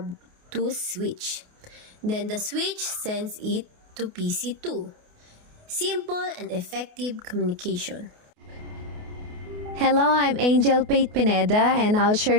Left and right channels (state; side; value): late; left; 28 ms